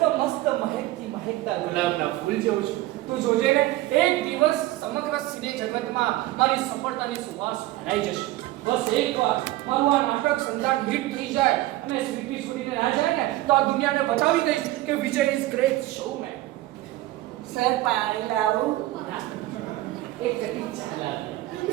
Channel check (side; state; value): left; quieter; 16.7 dB